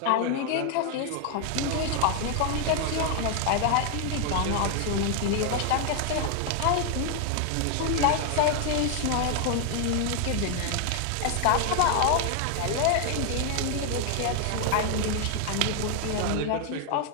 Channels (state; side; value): different; both; correlation 0.00